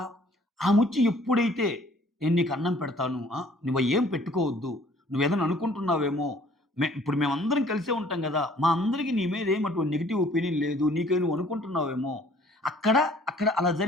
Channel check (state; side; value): normal; both; correlation 0.57